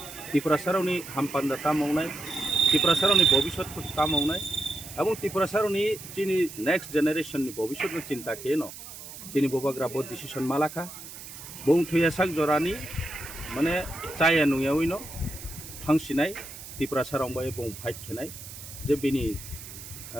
ত্রিপুরা সারনি হামপান্দা তা মাवनाय ত্রিপুরা সারনি ভবিষ্যৎ তা মাवनाय এবং ত্রিপুরা সারনি চিনি নেক্সট জেনারেশননি ভবিষ্যৎ চিন্তা কেন চিনি বুবাগ্রা বড় ডিসিশন মালাখা বং থুয়া সাক জরানি মানে চায়া নুয়াউইনো ফাংसिनाय ত্রিপুরা সারং বয়ে বং ফাইট খেনাय যে বিনি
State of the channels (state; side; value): noise; right; hiss, 13 dB below the sound